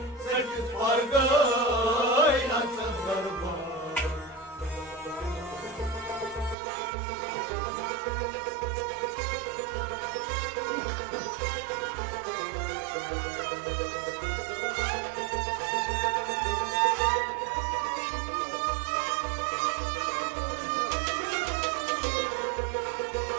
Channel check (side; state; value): left; drops out; at 6.6 s